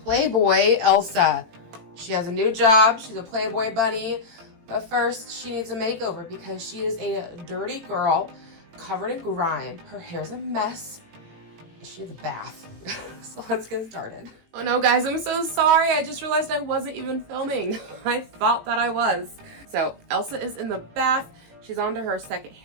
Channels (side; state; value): left; late; 18 ms